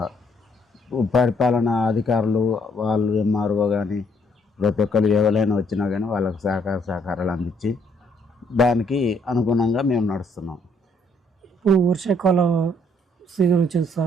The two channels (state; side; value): normal; both; correlation 0.68